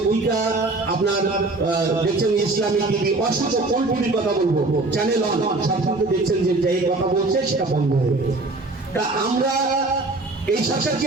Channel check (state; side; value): quieter; left; 3.1 dB